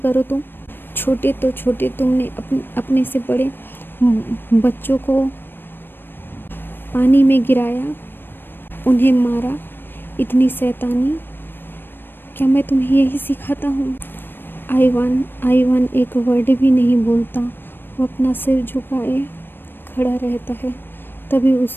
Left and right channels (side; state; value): right; late; 0.097 ms